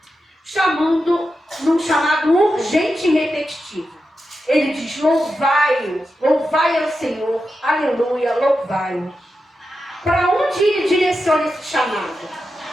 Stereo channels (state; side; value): normal; both; correlation 0.89